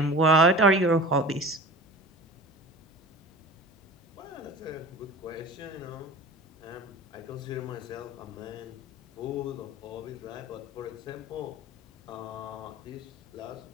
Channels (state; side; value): normal; both; correlation 0.38